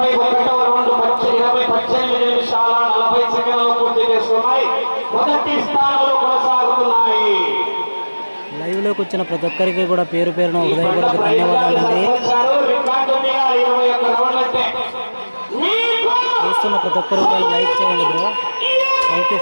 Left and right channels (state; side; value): inverted; both; correlation -1.00